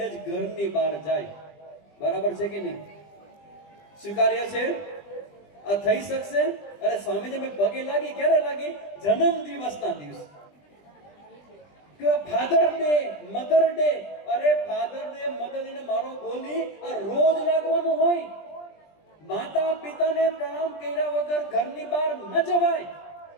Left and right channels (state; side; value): late; right; 20 ms